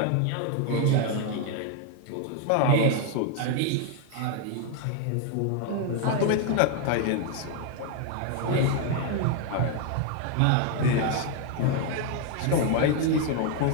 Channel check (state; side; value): different; both; correlation 0.01